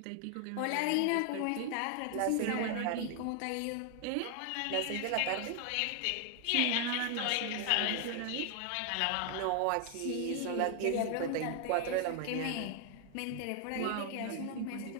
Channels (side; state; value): both; different; correlation 0.00